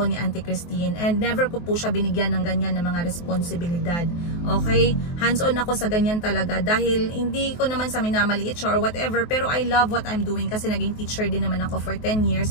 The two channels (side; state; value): right; late; 23 ms